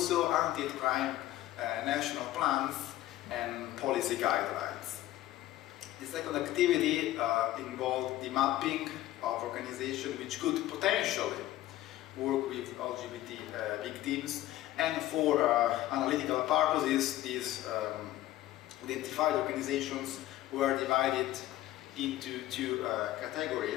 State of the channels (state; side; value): quieter; right; 14.9 dB